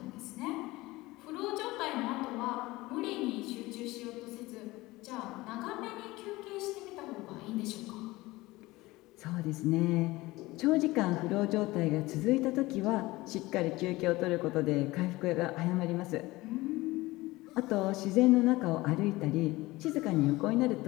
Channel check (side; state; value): right; quieter; 19.9 dB